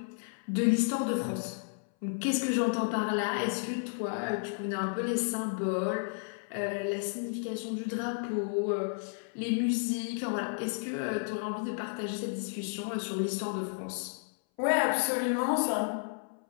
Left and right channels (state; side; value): silent; right; 56 dB below the other